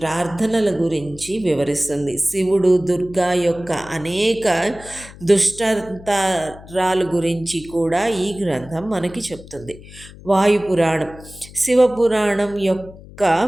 గురించి వివరిస్తుంది. శివుడు, దుర్గా యొక్క అనేక దుష్టంతరాల గురించి కూడా ఈ గ్రంథం మనకి చెప్తుంది. వాయుపురాణం శివపురాణం యొక్క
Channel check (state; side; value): noise; left; hum, 18 dB below the sound